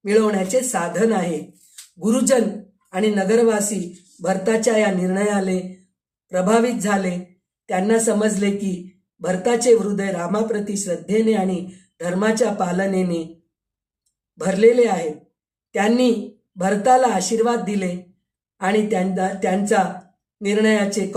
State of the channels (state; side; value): identical; both; correlation 1.00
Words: मिळवण्याचे साधन आहे. गुरुजन आणि नगरवासी भरताच्या या निर्णयाने प्रभावित झाले. त्यांना समजले की भरताचे हृदय रामाप्रती श्रद्धेने आणि धर्माच्या पालनेने भरलेले आहे. त्यांनी भरताला आशीर्वाद दिले आणि त्यांचा निर्णयाचे